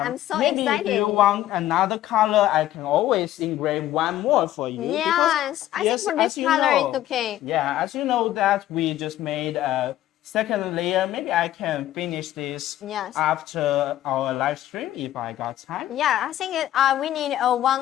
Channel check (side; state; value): right; quieter; 13.5 dB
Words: I'm so excited. Maybe if you want another color, I can always engrave one more for you. Yes, I think for this color it's okay. Yeah, as you know that we just made a second layer. Maybe I can finish this after our live stream if I got time. Yeah, I think we need